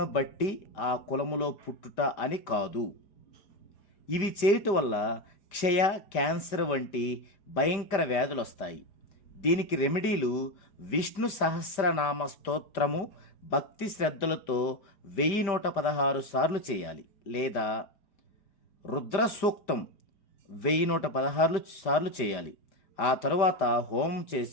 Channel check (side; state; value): right; late; 5.1 ms